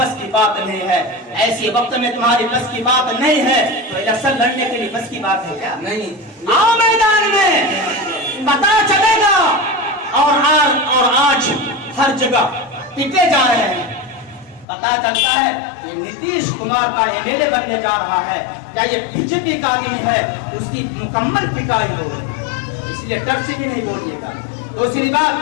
की बात नहीं है। ऐसे वक्त में तुम्हारी बस की बात नहीं है तो इलेक्शन लड़ने के लिए बस की बात है क्या? नहीं। आओ मैदान में, पता चलेगा। और आज हर जगह पिटे जा रहे हैं। पता चलता है कि नीतीश कुमार का एमएलए बनने जा रहा है, क्या ये बीजेपी का आदमी है, उसकी मुकम्मल पिटाई हो। इसलिए डर से भी नहीं बोलिएगा। दूसरी बात,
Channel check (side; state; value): right; drops out; at 14.7 s